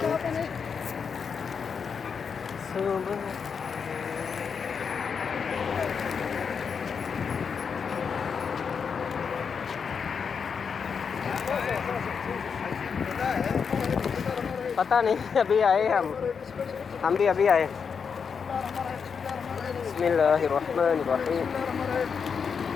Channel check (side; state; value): right; quieter; 6.2 dB